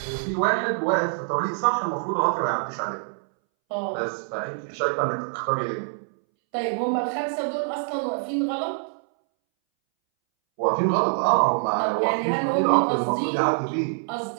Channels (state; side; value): silent; left; 62 dB below the other